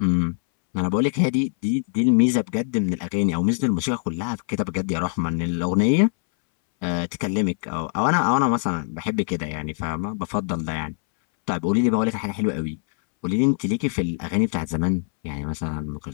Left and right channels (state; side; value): silent; right; 63 dB below the other